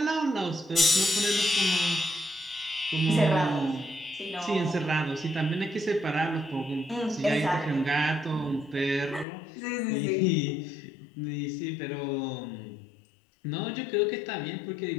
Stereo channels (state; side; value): drops out; right; at 9.2 s